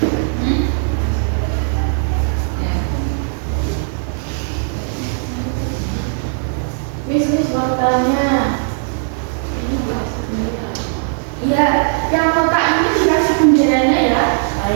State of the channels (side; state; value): left; silent; 58 dB below the other